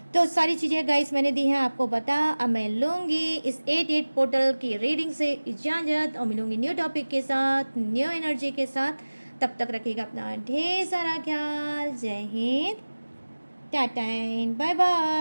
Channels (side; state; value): both; inverted; correlation -1.00